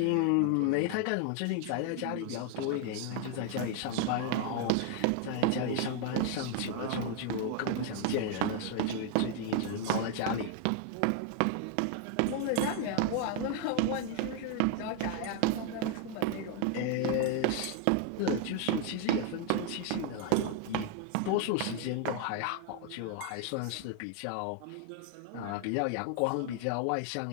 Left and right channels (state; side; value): different; both; correlation 0.00